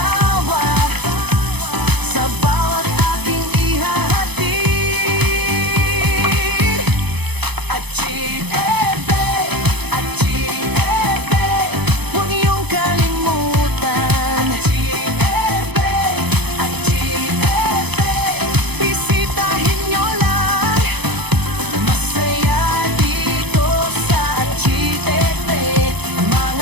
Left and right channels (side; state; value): left; late; 0.98 ms